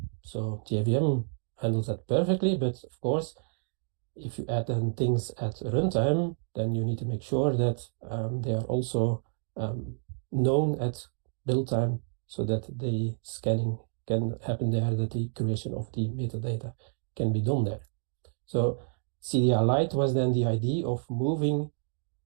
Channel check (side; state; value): left; silent; 56 dB below the other